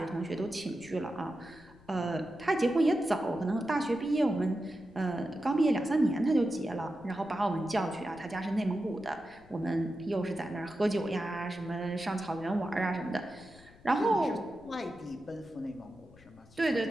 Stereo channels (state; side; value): noise; left; rumble, 24 dB below the sound